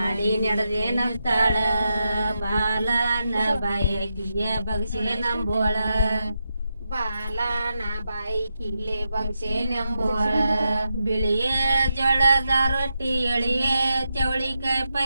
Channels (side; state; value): both; inverted; correlation -0.86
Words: ನಡೆದೇನಂತಾಳ ಬಾಲನ ಬಾಯಕಿಯ ಬಕ್ಷೆ ನಂಬೋಳ ಬಾಲನ ಬಾಯಿಕಿಲೆ ಬಕ್ಷೆ ನಂಬೋಳ ಬಿಳಿಯ ಜೋಳದ ರೊಟ್ಟಿ ಎಳಿಯ ಚವಳಿಕಾಯಿ